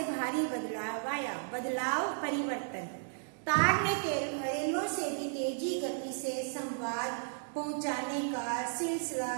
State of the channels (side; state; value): left; silent; digital silence